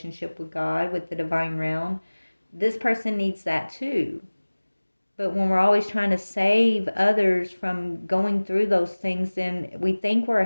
with God, with the divine realm, this person needs that too. But when we're always trying to save others from going through those things, then we think we're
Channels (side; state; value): both; inverted; correlation -1.00